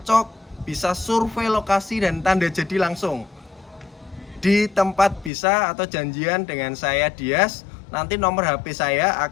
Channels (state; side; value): drops out; right; at 5.3 s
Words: bisa survei lokasi dan tanda jadi langsung di tempat bisa, atau janjian dengan saya Dias. Nanti nomor HP saya